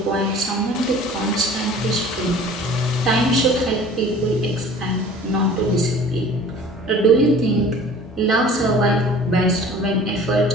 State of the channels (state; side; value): normal; both; correlation 0.46